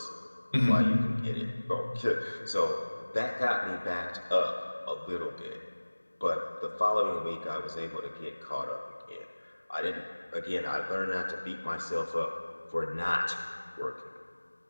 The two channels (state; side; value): inverted; both; correlation -1.00